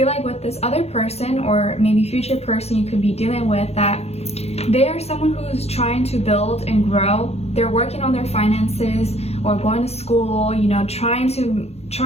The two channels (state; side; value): late; right; 0.30 ms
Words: like with this other person, or maybe future person you could be dealing with, that they are someone who's trying to build and grow. They're working on their finances or going to school, you know, trying